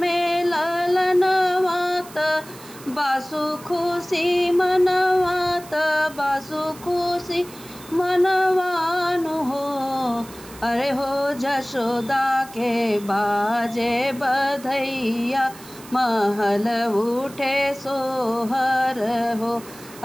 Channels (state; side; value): noise; right; hiss, 19 dB below the sound